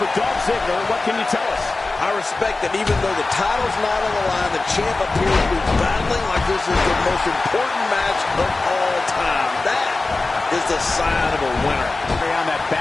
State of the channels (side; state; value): right; quieter; 3.4 dB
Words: Dolph Ziggler, what can you tell us? I respect that even though the title's not on the line, the champ appears to be battling like this is the most important match of all time. That is the sign of a winner. On that